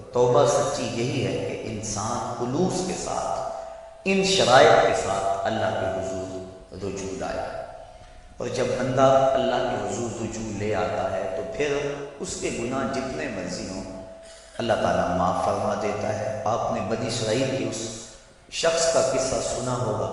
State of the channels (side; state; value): both; identical; correlation 1.00